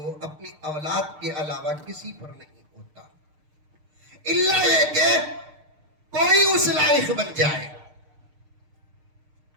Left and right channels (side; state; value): left; late; 6.6 ms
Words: اپنی اولاد کے علاوہ کسی پر نہیں ہوتا، الا یہ کہ کوئی اس لائق بن جائے.